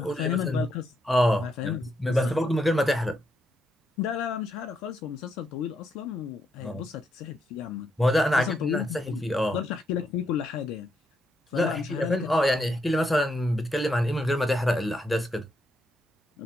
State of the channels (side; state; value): both; normal; correlation 0.79